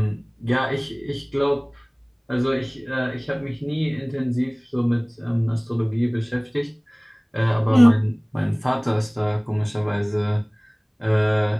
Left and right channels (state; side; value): identical; both; correlation 1.00